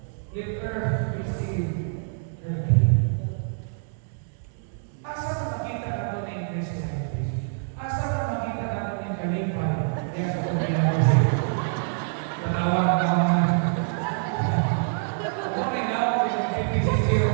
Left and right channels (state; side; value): silent; left; digital silence